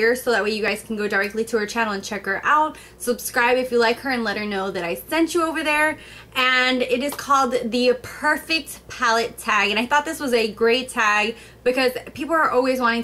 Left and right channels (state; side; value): identical; both; correlation 1.00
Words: so that way you guys can go directly to her channel and check her out. Subscribe if you like her and let her know that I sent you over there. And it is called the Perfect Palette Tag. And I thought this was a great tag because people are always wanting